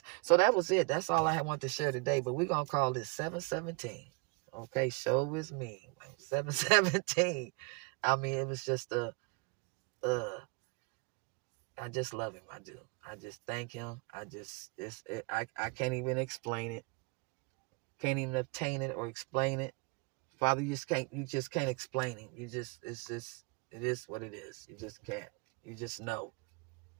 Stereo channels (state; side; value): quieter; left; 30.9 dB